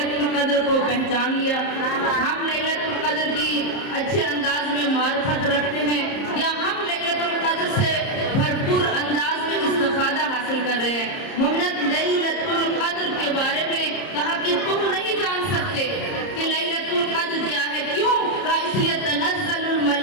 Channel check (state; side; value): late; right; 30 ms